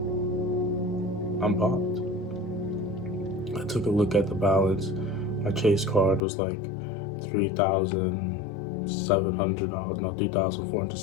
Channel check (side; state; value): right; drops out; at 6.2 s